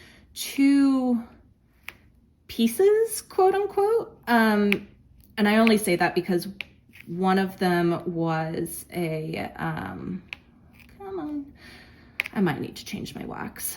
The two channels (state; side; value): identical; both; correlation 1.00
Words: 2 pieces, quote unquote. And I only say that because one of them was a, come on, I might need to change my